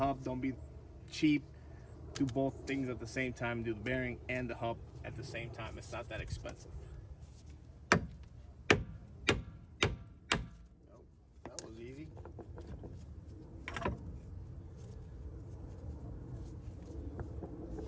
Don't be cheap. Do both things at the same time. Do the bearing and the hub at the same time. It's not that expensive. Oh, that was easy.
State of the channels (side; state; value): both; identical; correlation 1.00